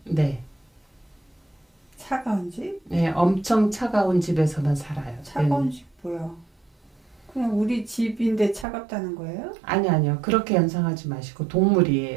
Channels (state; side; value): drops out; left; at 8.7 s